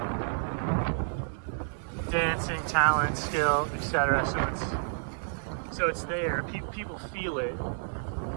dancing, talent, skill, etc. So it's there. People feel it,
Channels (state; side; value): silent; left; digital silence